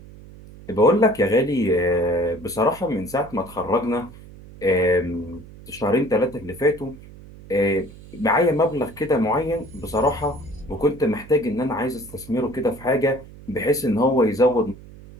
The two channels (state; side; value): noise; right; hum, 19 dB below the sound